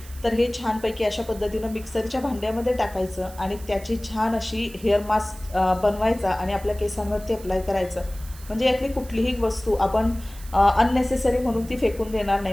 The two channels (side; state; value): right; noise; hiss, 19 dB below the sound